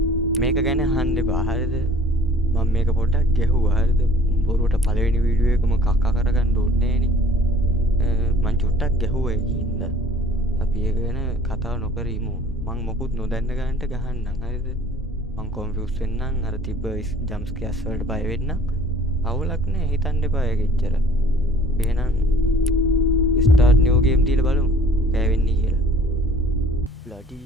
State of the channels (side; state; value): both; normal; correlation 0.51